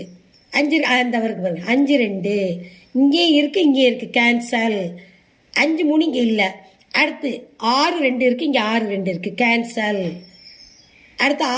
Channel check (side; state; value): both; identical; correlation 1.00